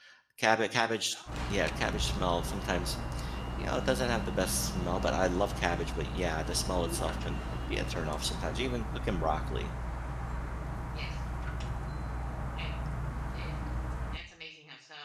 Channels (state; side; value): identical; both; correlation 1.00